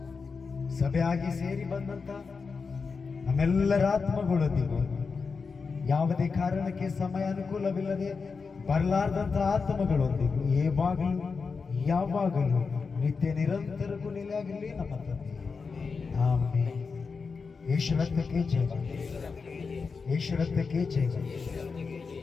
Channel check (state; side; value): quieter; right; 4.9 dB